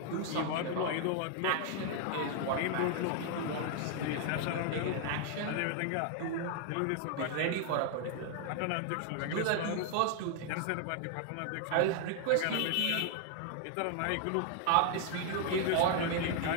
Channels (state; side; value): different; both; correlation 0.00